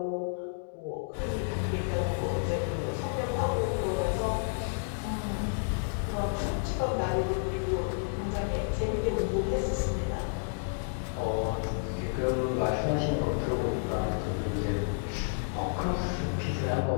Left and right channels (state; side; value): silent; right; digital silence